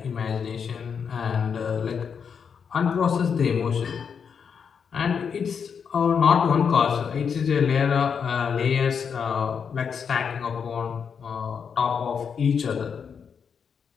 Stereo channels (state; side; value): quieter; right; 6.7 dB